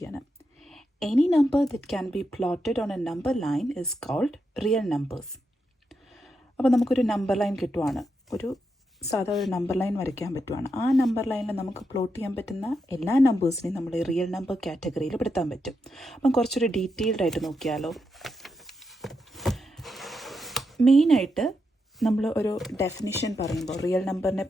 Any number that can be plotted on a number line is called real numbers. അപ്പോൾ നമുക്കൊരു നമ്പർ ലൈൻ കിട്ടുവാണ്, ഒരു നമ്പർ ലൈൻ വരയ്ക്കാൻ പറ്റുവാണ്. ആ നമ്പർ ലൈനിൽ നമുക്ക് പ്ലോട്ട് ചെയ്യാൻ പറ്റുന്ന എല്ലാ നമ്പേഴ്സിനെയും നമ്മൾ റിയൽ നമ്പർ കാറ്റഗറിയിൽ പെടുത്താൻ പറ്റും. അപ്പം കുറച്ചൊരു ഡീറ്റെയിൽഡ് ആയിട്ട് നോക്കിയാലോ. മെയിനായിട്ട് നമ്മൾ ഒരു ഡെഫിനിഷൻ പറയുമ്പോൾ, റിയൽ നമ്പറിനെ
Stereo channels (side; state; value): both; normal; correlation 0.84